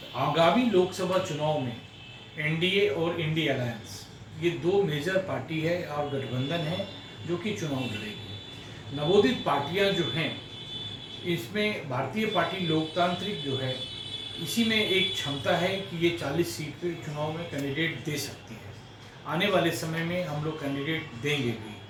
आगामी लोकसभा चुनाव में एनडीए और इंडी अलायंस, ये दो मेजर पार्टी है और गठबंधन है जो कि चुनाव लड़ेगी। नवोदित पार्टियां जो हैं, इसमें भारतीय पार्टी लोकतांत्रिक जो है, इसी में एक क्षमता है कि ये 40 सीट पे चुनाव में कैंडिडेट दे सकती है। आने वाले समय में हम लोग कैंडिडेट देंगे भी,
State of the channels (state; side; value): identical; both; correlation 1.00